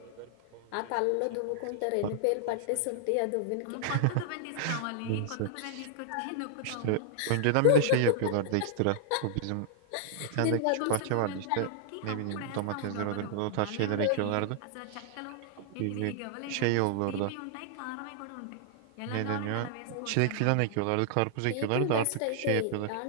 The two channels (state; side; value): different; both; correlation -0.01